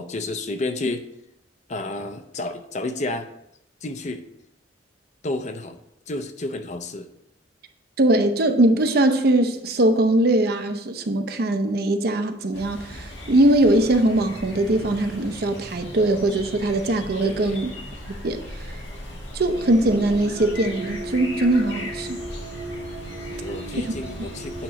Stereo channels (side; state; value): both; normal; correlation 0.53